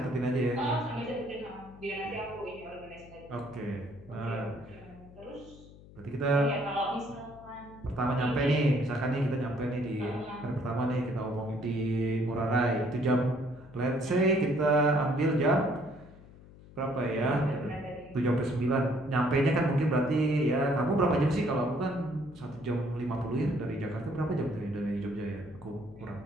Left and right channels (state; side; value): noise; left; hum, 20 dB below the sound